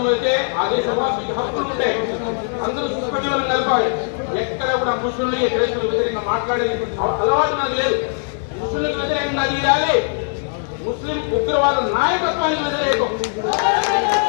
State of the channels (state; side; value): silent; right; 56 dB below the other